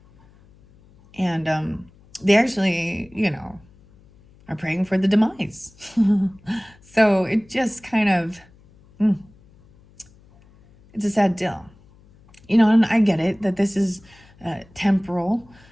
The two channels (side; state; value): left; noise; hum, 28 dB below the sound